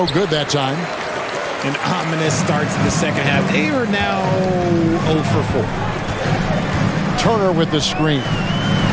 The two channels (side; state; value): both; identical; correlation 1.00